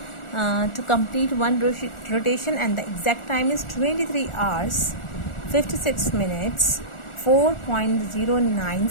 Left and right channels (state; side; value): late; right; 1.4 ms